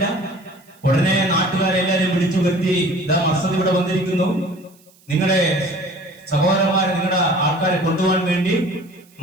ഉടനെ നാട്ടുകാരെല്ലാരും വിളിച്ചു വരുത്തി, ഇതാ മർസദ് ഇവിടെ വന്നിരിക്കുന്നു, നിങ്ങളുടെ സഹോദരന്മാരെ, നിങ്ങളുടെ ആൾക്കാരെ കൊണ്ടുപോകാൻ വേണ്ടി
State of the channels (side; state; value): right; noise; hiss, 30 dB below the sound